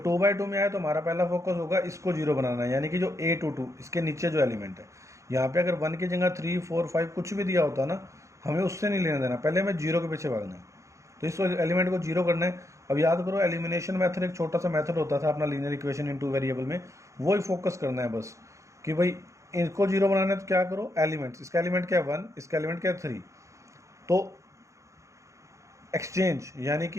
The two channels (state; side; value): late; left; 0.15 ms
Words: 2/2 में आए तो हमारा पहला फोकस होगा इसको 0 बनाना है, यानी कि जो A to 2 इसके नीचे जो एलिमेंट है, यहाँ पे अगर 1 की जगह 3 4 5 कुछ भी दिया होता ना, हमें उससे नहीं लेना देना, पहले हमें 0 के पीछे भागना है। तो इस एलिमेंट को 0 करना है। अब याद करो एलिमिनेशन मेथड एक छोटा सा मेथड होता था अपना लीनियर इक्वेशन इन 2 वेरिएबल में, वही फोकस करना है बस कि भाई इनको 0 बनाना है। तो क्या करो, एलिमेंट्स, इसका एलिमेंट क्या है 1, इसका एलिमेंट क्या है 3, तो एक्सचेंज, यानी